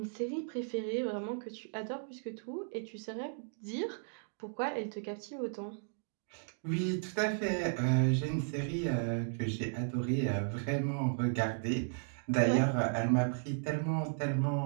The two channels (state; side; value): silent; left; digital silence